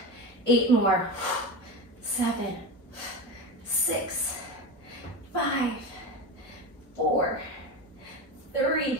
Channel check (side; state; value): both; normal; correlation 0.23